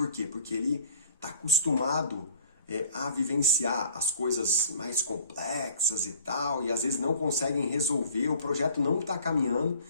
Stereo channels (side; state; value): both; inverted; correlation -0.50